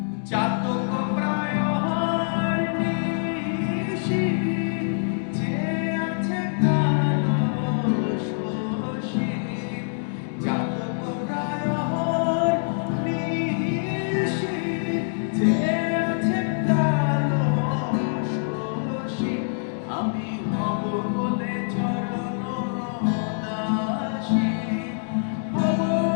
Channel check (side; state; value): right; silent; digital silence